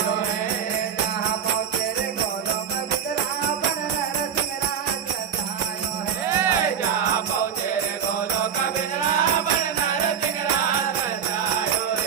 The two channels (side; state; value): left; quieter; 7.9 dB